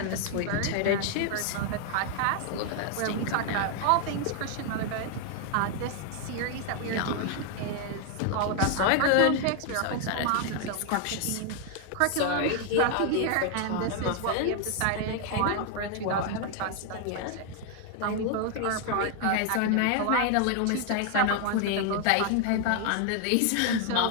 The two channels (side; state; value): both; different; correlation 0.00